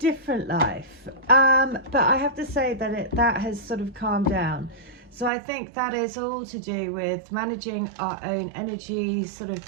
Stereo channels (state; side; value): drops out; left; at 5.3 s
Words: life. But I have to say that that has sort of calmed down. So I think that is all to do with managing our own energy, sort of